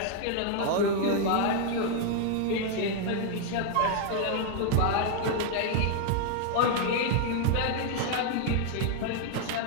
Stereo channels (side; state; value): both; different; correlation 0.00